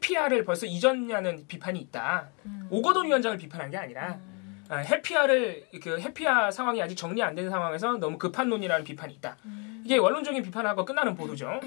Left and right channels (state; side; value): quieter; right; 34.9 dB